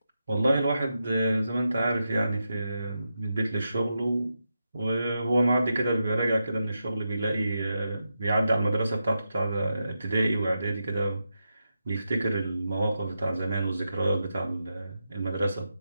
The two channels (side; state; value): both; inverted; correlation -0.87